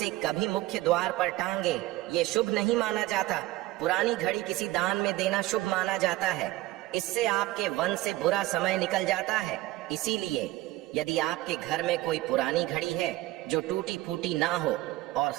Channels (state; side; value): quieter; left; 17.6 dB